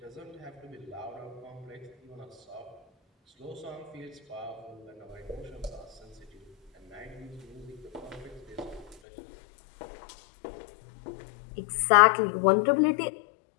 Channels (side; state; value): right; drops out; at 9.0 s